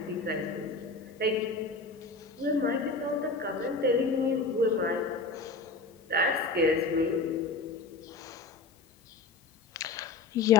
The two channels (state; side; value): quieter; right; 3.6 dB